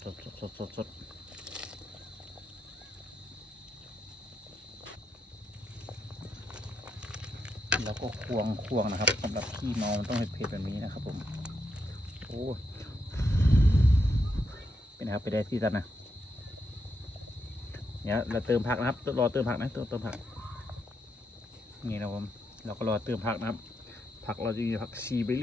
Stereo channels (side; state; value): both; normal; correlation 0.81